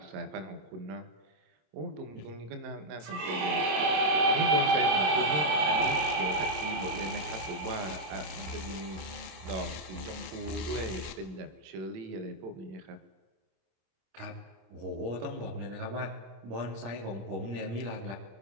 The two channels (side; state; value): left; late; 26 ms